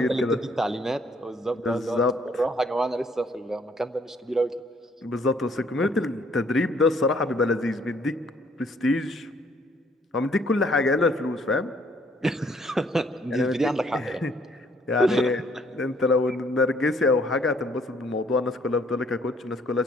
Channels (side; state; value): both; normal; correlation 0.64